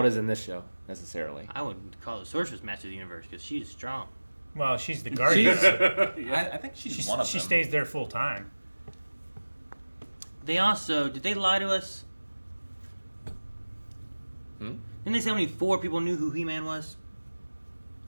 it is in this show, necessarily. I wouldn't call the sorceress master of the universe because she's strong. Well, she's the guardian. I think she's one of She them. stays there full time. They also did they lie to us? Didn't they say only 4 people knew who He-Man was?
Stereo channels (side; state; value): both; inverted; correlation -1.00